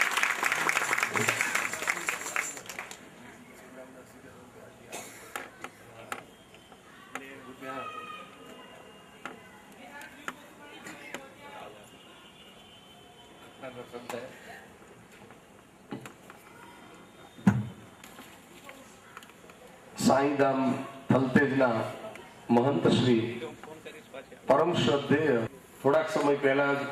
સાઈધામ થલતેજના મહંત શ્રી પરમ શ્રદ્ધેય થોડાક સમય પહેલા જ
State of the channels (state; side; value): identical; both; correlation 1.00